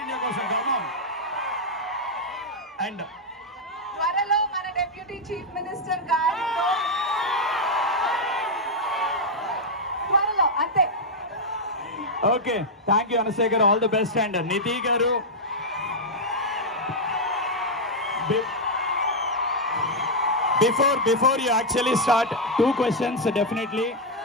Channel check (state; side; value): normal; both; correlation -0.02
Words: ఇండియా కోసం గర్వం. అండ్ త్వరలో మన డెప్యూటీ చీఫ్ మినిస్టర్ గారితో త్వరలో అంతే. ఓకే, థ్యాంక్ యూ అనసూయ గారు, ఆల్ ది బెస్ట్. అండ్ నిధి గారు, before you actually start, 2 questions definitely.